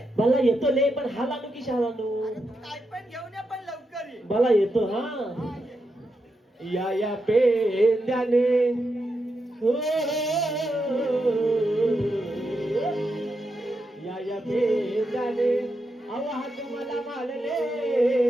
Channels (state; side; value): normal; both; correlation 0.85